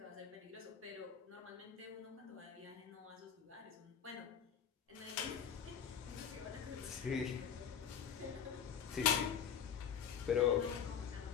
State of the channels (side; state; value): right; quieter; 7.7 dB